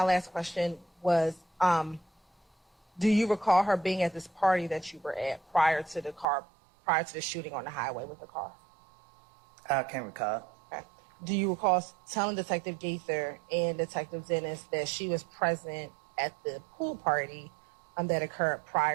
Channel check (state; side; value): drops out; left; at 6.2 s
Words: last question was, Do you recall her being at this party that you were at prior to the shooting on the highway with the car? I can't recall. Okay. Do you recall telling Detective Gaither and Detective Dennis that she was present at the pool party that occurred